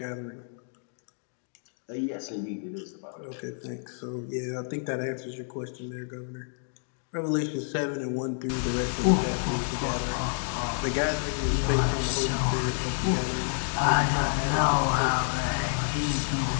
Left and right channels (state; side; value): silent; right; 59 dB below the other